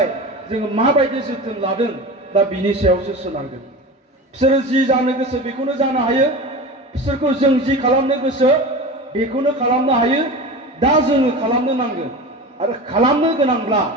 जोङो माबायदि जोथोन लादों दा बिनि सायावसो सोनारगोन बिसोरो जि जानो गोसो बेखौनो जानो हायो बिसोरखौ जों जि खालामनो गोसो बेखौनो खालामनो हायो दा जोङो खालामनो नांगोन आरो खालामनो गोनांब्ला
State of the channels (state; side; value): normal; both; correlation 0.30